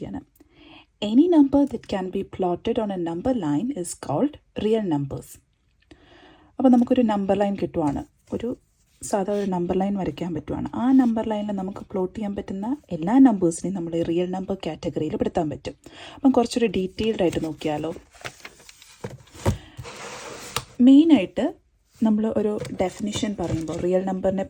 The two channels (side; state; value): both; identical; correlation 1.00